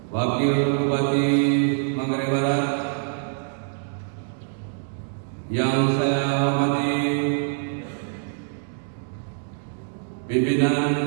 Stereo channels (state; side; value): silent; left; digital silence